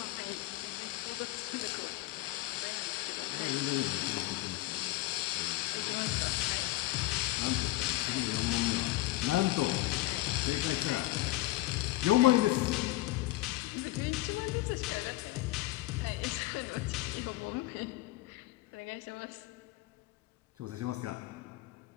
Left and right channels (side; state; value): right; quieter; 17.6 dB